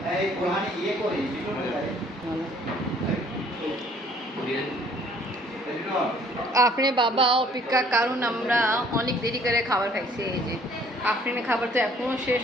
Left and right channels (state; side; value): normal; both; correlation 0.59